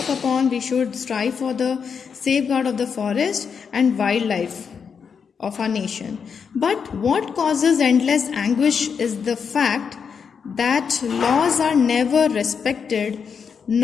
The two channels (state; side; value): quieter; right; 6.4 dB